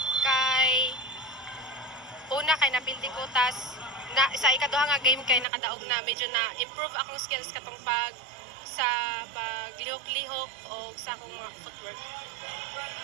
kay napildi ko sa ikaduha nga game kay nakadaog na medyo na improve akong skills katong paglihok-lihok o sa akong mga footwork.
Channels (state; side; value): drops out; left; at 5.5 s